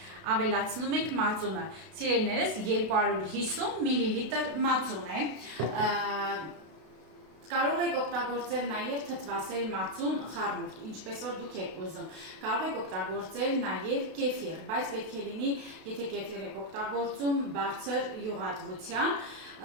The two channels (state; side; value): late; left; 32 ms